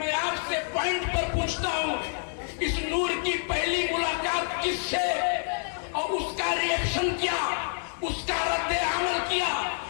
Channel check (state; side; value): silent; right; 59 dB below the other